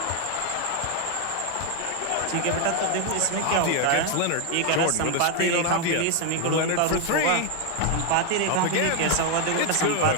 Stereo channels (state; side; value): different; both; correlation 0.01